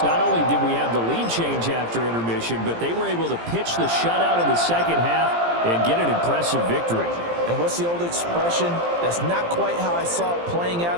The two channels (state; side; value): late; left; 17 ms